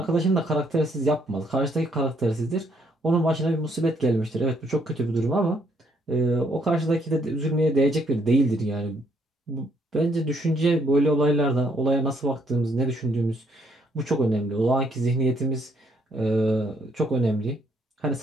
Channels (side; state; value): both; normal; correlation 0.70